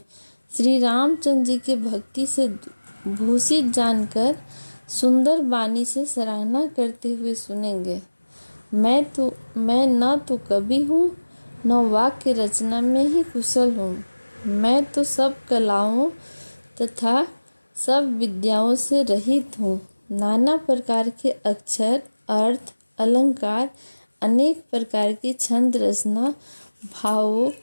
श्री रामचंद्र जी के भक्ति से भूषित जानकर सुंदर वाणी से सराहना करते हुए सुनेंगे। मैं न तो कवि हूँ, न वाक्य रचना में ही कुशल हूँ। मैं तो सब कलाओं तथा सब विद्याओं से रहित हूँ। नाना प्रकार के अक्षर, अर्थ, अलंकार, अनेक प्रकार की छंद रचना, भावों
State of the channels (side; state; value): both; inverted; correlation -1.00